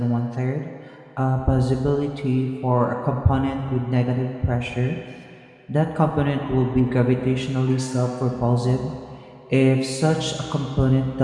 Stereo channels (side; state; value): both; identical; correlation 1.00